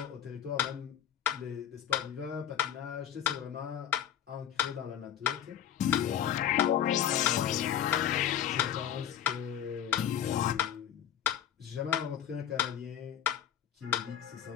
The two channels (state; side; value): quieter; right; 10.1 dB